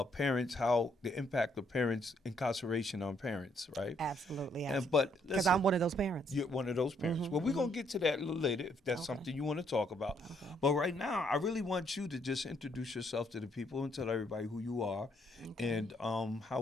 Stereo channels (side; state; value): both; normal; correlation 0.70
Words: parents, how the impact of parents, incarceration on parents, right? Absolutely. But Because listen, I'm one of those parents. you're one of those parents. Well, we're going to get to that a little later if that's something you want to talk about. But right now, I really want you to just introduce yourself to the people and tell everybody who you are and